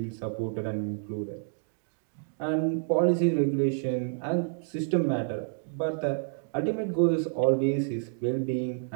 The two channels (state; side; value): silent; left; digital silence